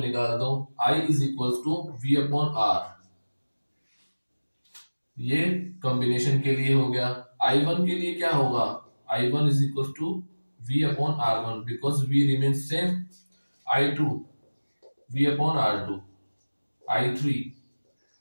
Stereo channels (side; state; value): both; inverted; correlation -1.00